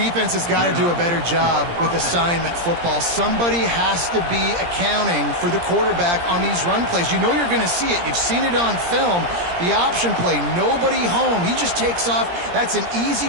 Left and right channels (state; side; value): late; left; 17 ms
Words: has got to do a better job with assignment football. Somebody has to be accounting for the quarterback on these run plays. You know you're going to see it. You've seen it on film. The option play, nobody home. He just takes off. That's an easy